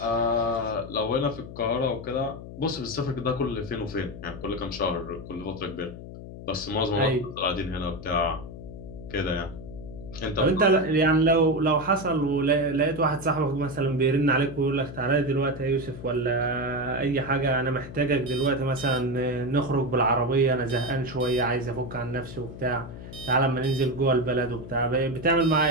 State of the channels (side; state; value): left; noise; hum, 12 dB below the sound